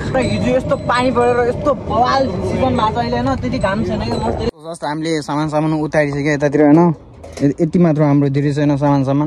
हिजो यस्तो पानी परेर यस्तो बवाल सिजन भएको छ अहिले होइन त्यति घाम छैन कि जस्तो हामीले सामान उतारिसक्यो यतातिर होइन यति मात्र हाम्रो धेरै छैन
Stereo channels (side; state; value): both; identical; correlation 1.00